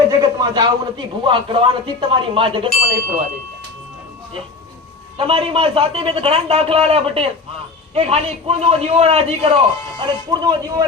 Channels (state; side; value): quieter; right; 4.0 dB